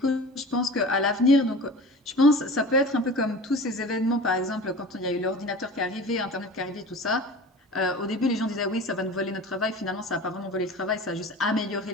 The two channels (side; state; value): both; normal; correlation 0.37